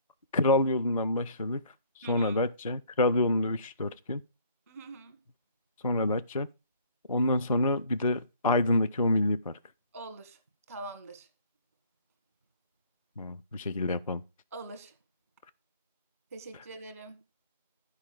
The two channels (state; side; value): inverted; both; correlation -0.56